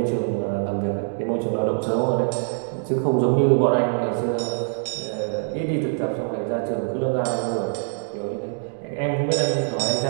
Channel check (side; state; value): left; silent; 63 dB below the other